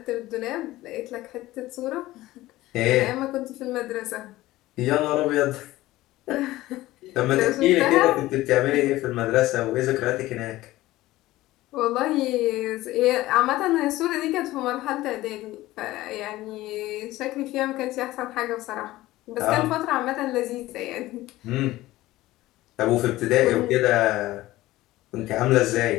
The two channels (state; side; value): quieter; right; 17.0 dB